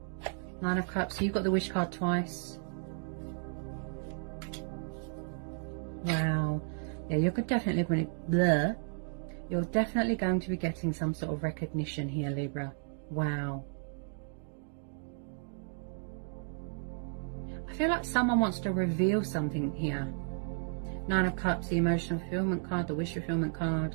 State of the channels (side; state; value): left; silent; 55 dB below the other